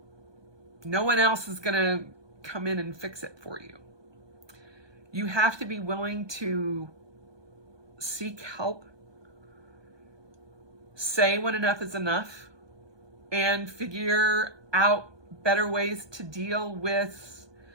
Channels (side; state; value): left; late; 1.2 ms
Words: one else is going to come in and fix it for you. You have to be willing to seek help, say when enough is enough, and figure out better ways to deal with